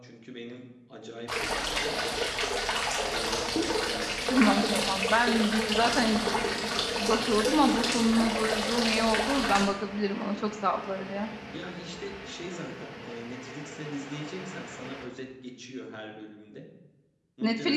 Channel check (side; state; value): both; identical; correlation 1.00